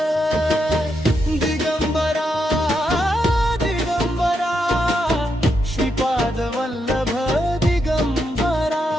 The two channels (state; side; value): normal; both; correlation 0.82